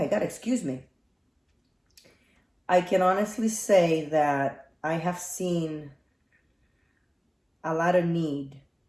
God, excuse me. I can honestly say that I have seen a lot of need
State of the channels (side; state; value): both; identical; correlation 1.00